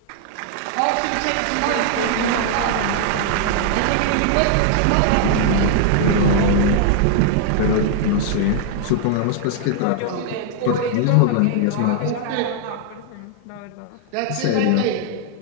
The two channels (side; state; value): both; different; correlation 0.00